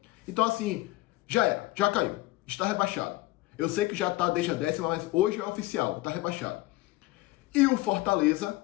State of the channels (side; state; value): right; quieter; 19.3 dB